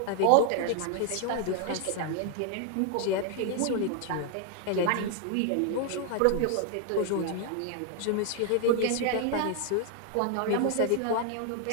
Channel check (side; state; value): both; different; correlation 0.00